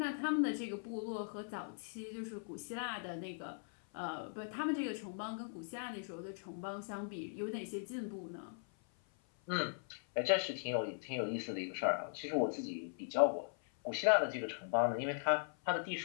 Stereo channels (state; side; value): silent; right; 51 dB below the other